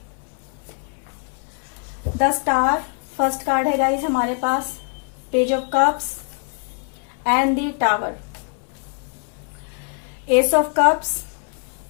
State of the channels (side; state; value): right; quieter; 39.6 dB